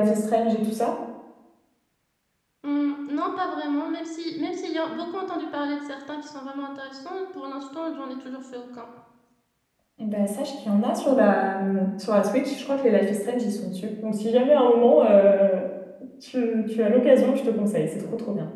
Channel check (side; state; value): both; identical; correlation 1.00